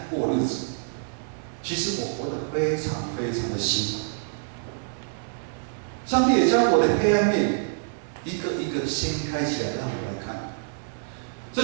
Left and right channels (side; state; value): left; silent; 57 dB below the other